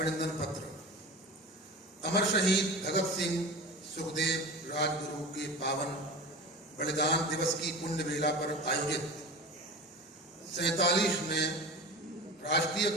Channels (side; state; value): both; normal; correlation 0.32